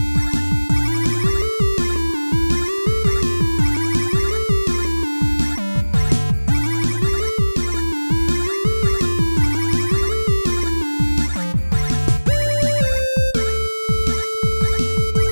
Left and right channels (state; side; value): inverted; both; correlation -1.00